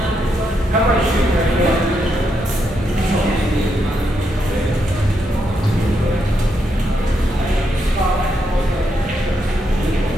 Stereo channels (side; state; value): both; normal; correlation 0.80